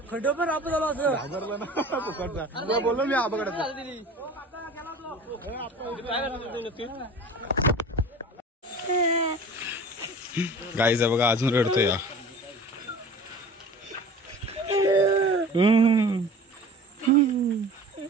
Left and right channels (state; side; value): normal; both; correlation 0.41